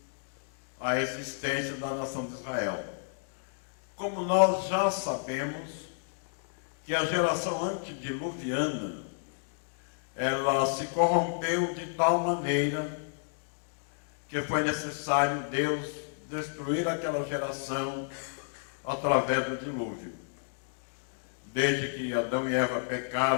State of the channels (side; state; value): right; silent; digital silence